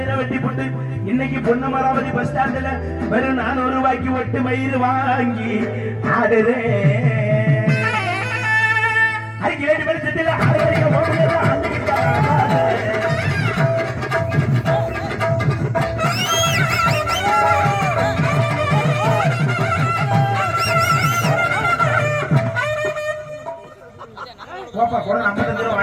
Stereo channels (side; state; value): both; identical; correlation 1.00